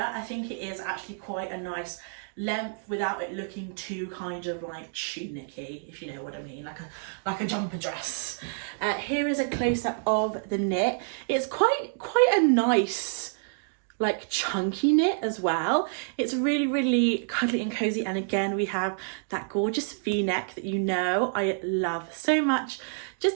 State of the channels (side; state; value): left; silent; digital silence